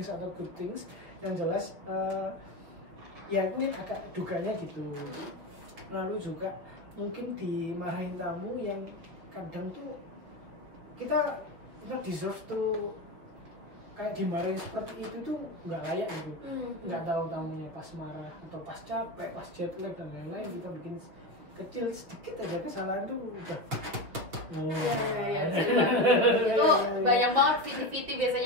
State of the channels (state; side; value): late; left; 6.3 ms